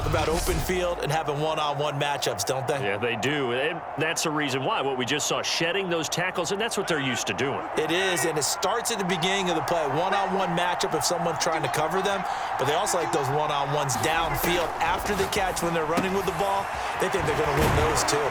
about open field and having one-on-one matchups, don't they? Yeah, they do. And that's the reason why. What we just saw, shedding those tackles, and that's what they're used to doing. It is, and it starts at the beginning of the play. One-on-one matchup if someone's trying to cover them, but they also like those one-on-ones downfield after the catch when they're running with the ball. They think they're going to win those too.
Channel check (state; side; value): identical; both; correlation 1.00